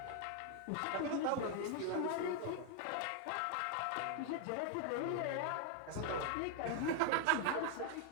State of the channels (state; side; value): different; both; correlation 0.00